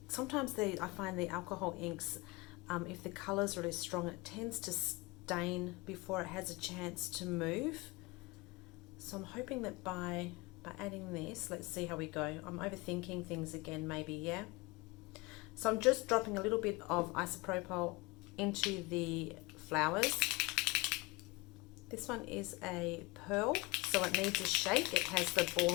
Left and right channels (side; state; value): right; quieter; 24.2 dB